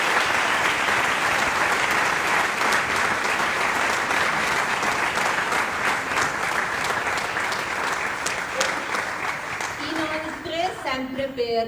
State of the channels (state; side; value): identical; both; correlation 1.00